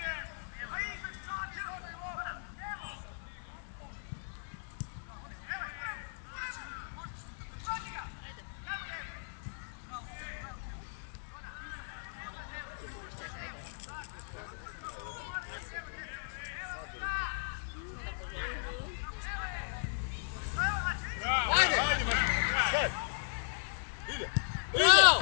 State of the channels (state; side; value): silent; right; digital silence